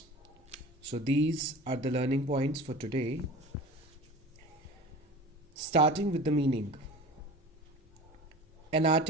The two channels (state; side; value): normal; both; correlation 0.37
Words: So these are the learning points for today. Starting with the meaning. An